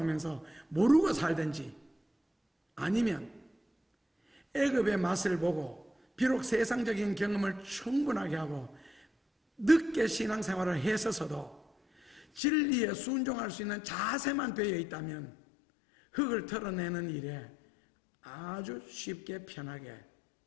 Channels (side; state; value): right; drops out; at 12.4 s